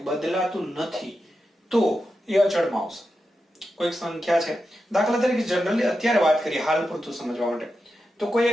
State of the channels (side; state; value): both; normal; correlation 0.89